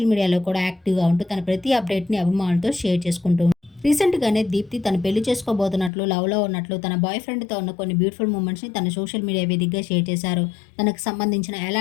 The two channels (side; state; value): right; drops out; at 5.9 s